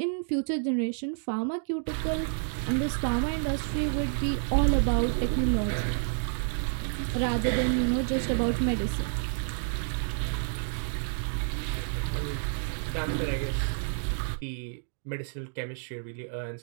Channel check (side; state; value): left; silent; digital silence